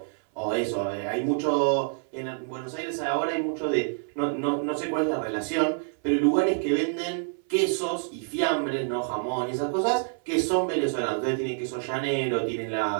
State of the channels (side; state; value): left; silent; 60 dB below the other